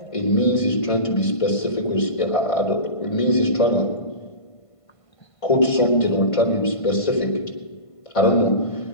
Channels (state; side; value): late; right; 1.5 ms